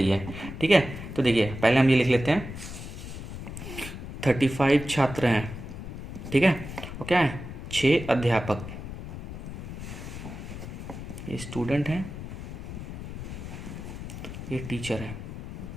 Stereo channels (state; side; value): noise; left; rumble, 9 dB below the sound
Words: है। ठीक है, तो देखिए पहले हम ये लिख लेते हैं 35 छात्र हैं, ठीक है, और क्या है 6 अध्यापक, ये स्टूडेंट हैं, ये टीचर है।